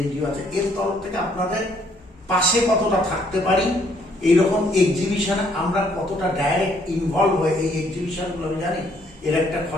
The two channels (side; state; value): both; normal; correlation 0.66